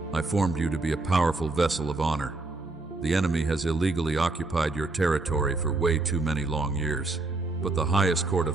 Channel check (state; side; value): quieter; left; 3.2 dB